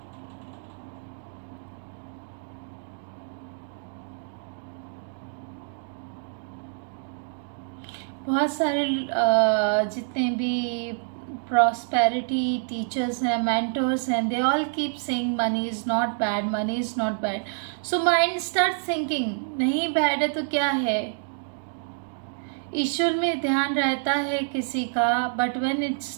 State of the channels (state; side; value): silent; left; digital silence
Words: बहुत सारे जितने भी प्रॉस्पेरिटी टीचर्स हैं, मेंटर्स हैं, they all keep saying money is not bad, money is not bad. So mind start thinking नहीं बैड है तो क्या है? ईश्वर में ध्यान रहता है किसी का, but when it